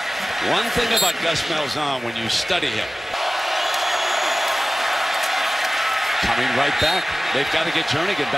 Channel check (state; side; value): normal; both; correlation 0.97